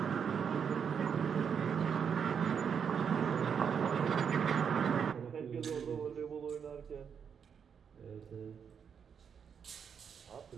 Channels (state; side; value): quieter; left; 7.1 dB